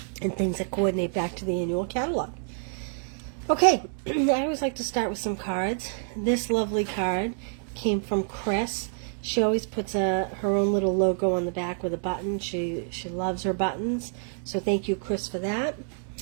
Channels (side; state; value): left; silent; 60 dB below the other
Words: and things that coordinate back to the annual catalog. Okay, I always like to start with some cards. This lovely card came from Chris. She always puts her own little logo on the back with a button. She loves her buttons, so thank you, Chris, for that.